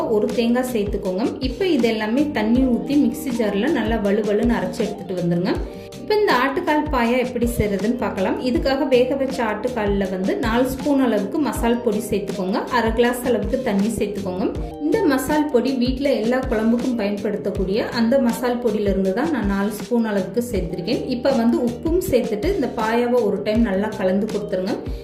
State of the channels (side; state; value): both; identical; correlation 1.00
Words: 1 தேங்காய் சேர்த்துக்கோங்க. இப்போ இது எல்லாமே தண்ணி ஊற்றி மிக்சி ஜாரில் நல்லா வலுவலுன்னு அரைச்சி எடுத்துகிட்டு வந்துருங்க. இப்போ இந்த ஆட்டுக்கால் பாயா எப்படி செய்கிறதுன்னு பார்க்கலாம். இதுக்காக வேக வச்ச ஆட்டுக்காலில் 4 ஸ்பூன் அளவுக்கு மசால் பொடி சேர்த்துக்கோங்க. 1/2 கிளாஸ் அளவுக்கு தண்ணி சேர்த்துக்கோங்க. இந்த மசால் பொடி வீட்டில் எல்லா குழம்புக்கும் பயன்படுத்தக்கூடிய அந்த மசால் பொடியிலிருந்து தான் நான் 4 ஸ்பூன் அளவுக்கு சேர்த்துருக்கேன். இப்போ உப்பும் சேர்த்துட்டு இந்த பாயாவை ஒரு டைம் நல்லா கலந்து கொடுத்துருங்க.